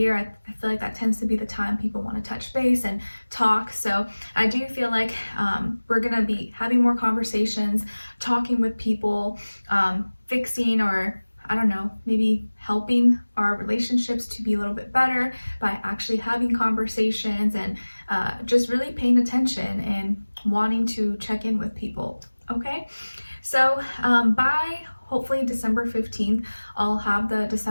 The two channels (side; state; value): both; inverted; correlation -1.00